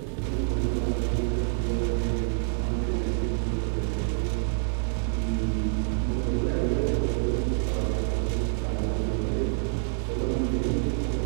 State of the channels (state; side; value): silent; left; digital silence